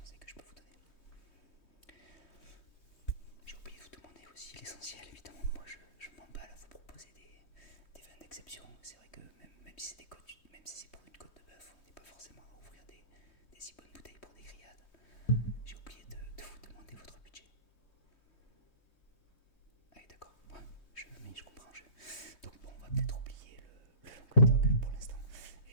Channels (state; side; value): late; right; 3.1 ms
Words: que je peux vous donner. J'ai oublié de vous demander aussi l'essentiel, évidemment, moi je m'emballe à vous proposer des vins d'exception. C'est vrai que même si c'est pour une côte de bœuf, on n'est pas forcément à ouvrir des si bonnes bouteilles pour des grillades. J'ai oublié de vous demander votre budget. Ah oui d'accord, ouais, je comprends. Donc bon, on va peut-être oublier le Languedoc pour l'instant.